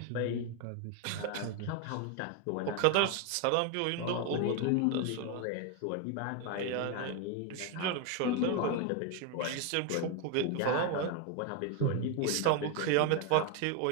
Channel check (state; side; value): different; both; correlation 0.01